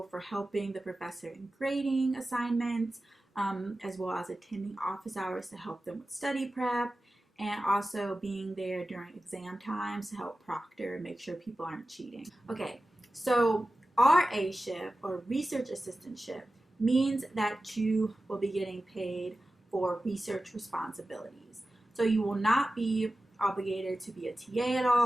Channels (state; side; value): normal; both; correlation 0.94